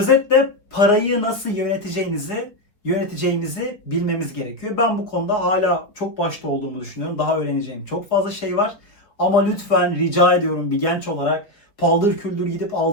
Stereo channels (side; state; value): right; late; 4.6 ms